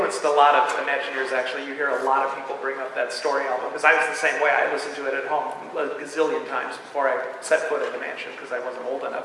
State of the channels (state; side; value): identical; both; correlation 1.00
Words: a lot of Imagineers, actually. You hear a lot of people bring up that story album, because I was the same way. I listened to it at home a gazillion times before I set foot in the mansion, because I wasn't old